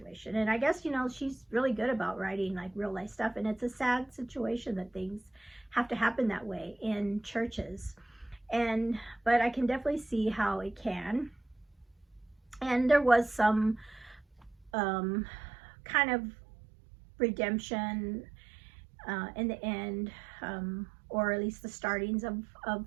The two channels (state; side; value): drops out; left; at 14.7 s